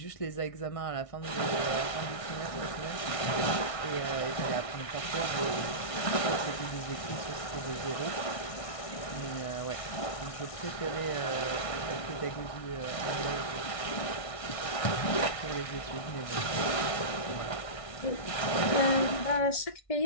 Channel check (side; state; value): right; late; 1.6 ms